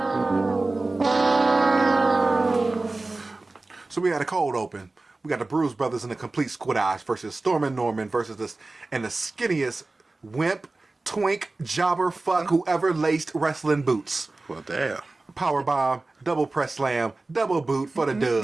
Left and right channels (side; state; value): left; quieter; 3.2 dB